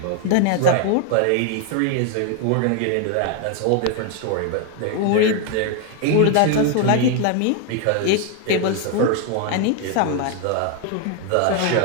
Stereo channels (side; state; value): both; different; correlation 0.01